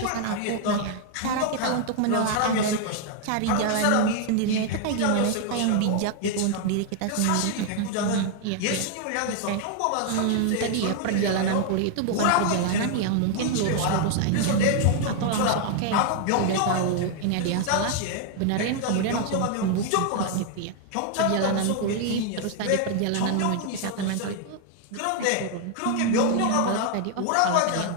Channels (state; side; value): different; both; correlation 0.00